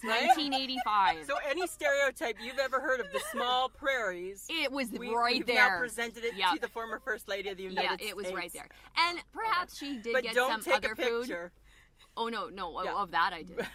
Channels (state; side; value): identical; both; correlation 1.00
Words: 1985. So any stereotype you've ever heard of the small prairies, it was we've there. Now presented it to the former First Lady of the United States. Yeah, it was right there. And perhaps she did get don't some take other a picture. food. Oh, no, of that I did.